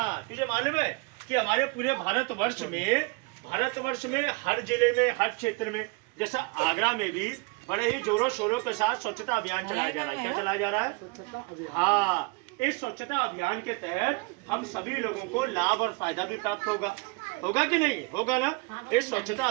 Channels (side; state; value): left; quieter; 28.5 dB